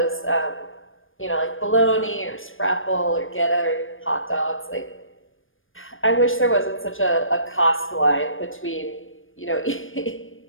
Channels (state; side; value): late; right; 0.59 ms